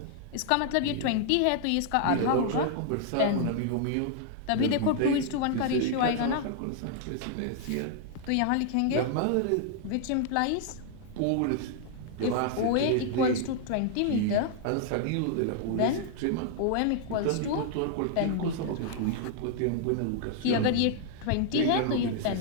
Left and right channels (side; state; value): both; different; correlation -0.01